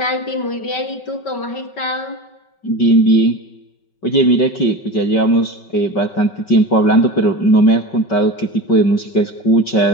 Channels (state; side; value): late; right; 5.3 ms